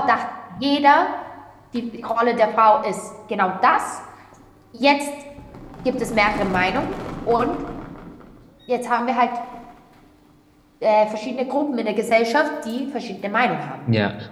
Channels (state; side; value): identical; both; correlation 1.00